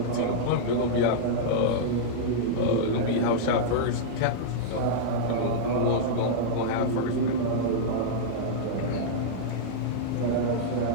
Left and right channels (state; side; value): different; both; correlation -0.03